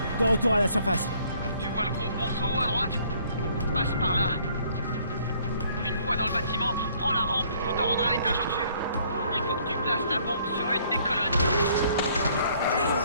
De retour à la surface. Tu vois le gros ponceau à droite? fois dans le bâtiment, prends la rampe pour te rendre à l'étage au-dessus. Il faut que tu places la bombe sur une des colonnes.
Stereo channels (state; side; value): inverted; both; correlation -0.62